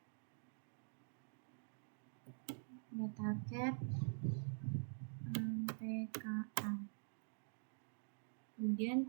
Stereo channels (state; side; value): silent; left; digital silence